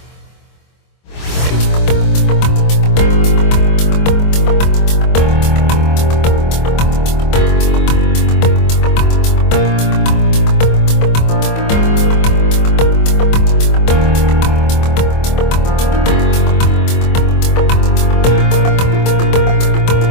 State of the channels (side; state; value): right; late; 24 ms